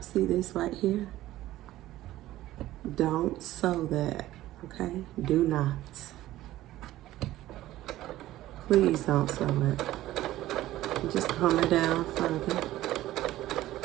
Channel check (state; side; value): quieter; left; 15.2 dB